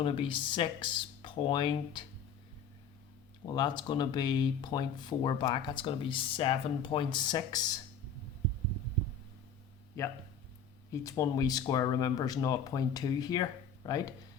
to be 6 point, well, that's going to be 0.4 back, that's going to be 7.6. Yeah, each one we square, remember, is 0.2 here, right?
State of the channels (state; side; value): quieter; right; 6.0 dB